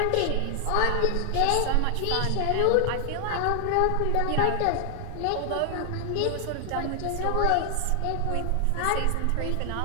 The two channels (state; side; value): different; both; correlation 0.00